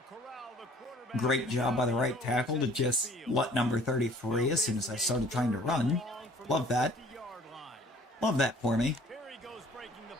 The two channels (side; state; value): both; normal; correlation 0.53